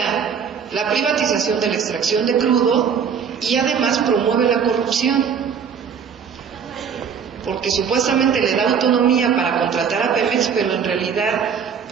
la privatización de la extracción de crudo y además promueve la corrupción, porque supuestamente le da autonomía para contratar a Pemex, pero en realidad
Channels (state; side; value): quieter; left; 6.9 dB